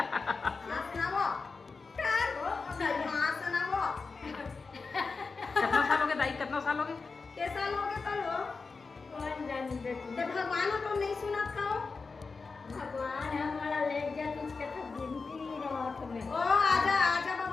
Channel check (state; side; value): quieter; right; 4.4 dB